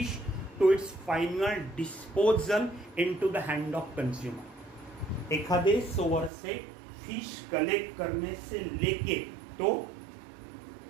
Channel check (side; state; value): left; drops out; at 6.3 s